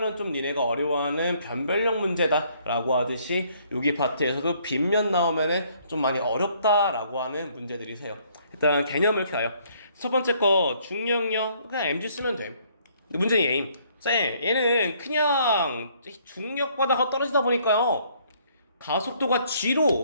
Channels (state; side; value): inverted; both; correlation -0.65